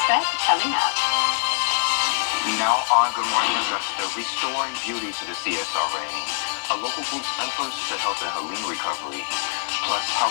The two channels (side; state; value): right; silent; digital silence